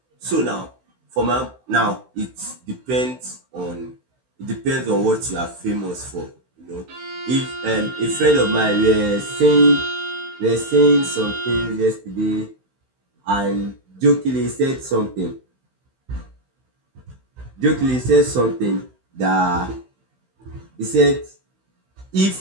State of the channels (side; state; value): left; late; 16 ms